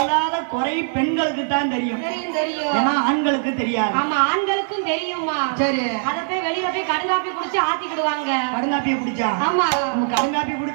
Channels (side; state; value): left; silent; 57 dB below the other